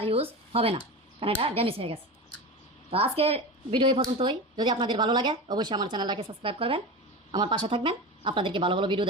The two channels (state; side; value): normal; both; correlation 0.26